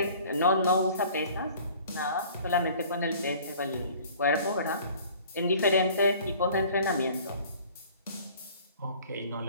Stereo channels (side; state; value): both; inverted; correlation -0.50